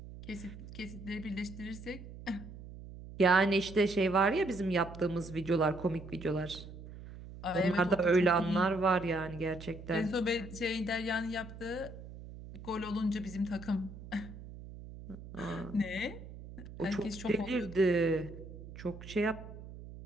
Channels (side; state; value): right; noise; hum, 14 dB below the sound